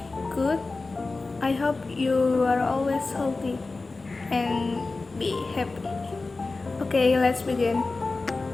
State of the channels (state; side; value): quieter; right; 3.6 dB